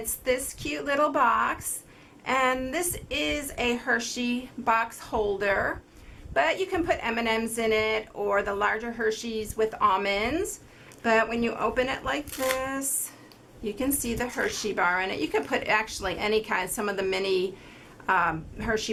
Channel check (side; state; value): both; identical; correlation 1.00